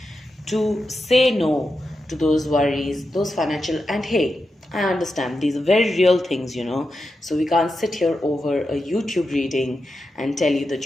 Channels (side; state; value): both; normal; correlation 0.88